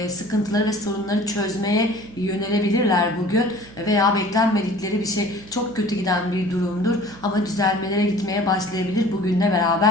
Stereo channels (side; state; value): right; noise; hum, 20 dB below the sound